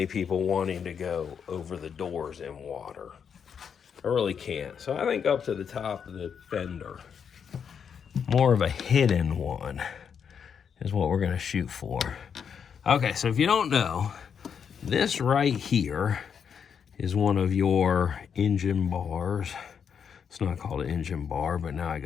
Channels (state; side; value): quieter; right; 7.2 dB